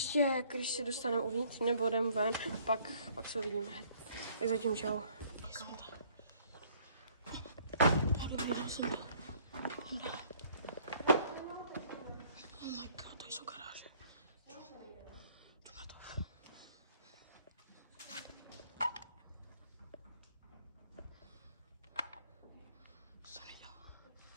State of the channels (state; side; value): inverted; both; correlation -0.60